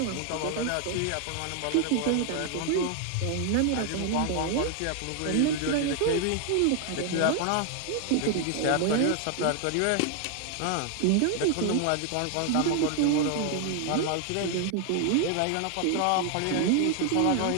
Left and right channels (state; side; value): different; both; correlation 0.00